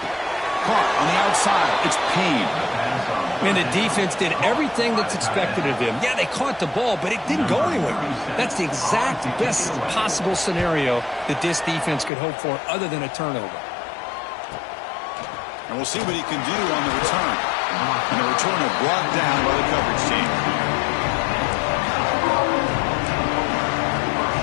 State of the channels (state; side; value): drops out; right; at 12.1 s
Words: Caught on the outside, it's Payne. And the defense did everything that's expected of them. Yeah, they caught the ball, but it didn't go anywhere. That's the exact best possible scenario that this defense could hope for other than a turnover. And we'll see what he can do on the return. And the returner brought down by the coverage team.